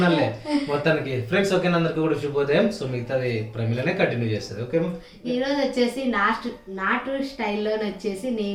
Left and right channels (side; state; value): both; identical; correlation 1.00